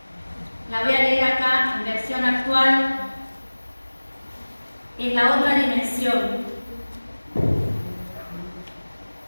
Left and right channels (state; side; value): inverted; both; correlation -1.00